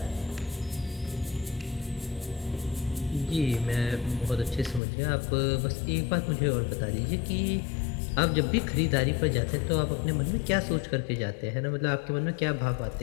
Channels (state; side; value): drops out; right; at 4.8 s